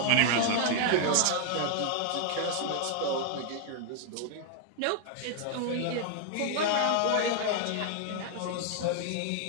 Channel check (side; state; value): both; different; correlation 0.00